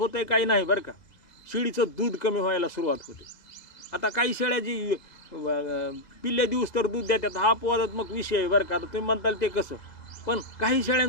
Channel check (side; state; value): right; late; 2.0 ms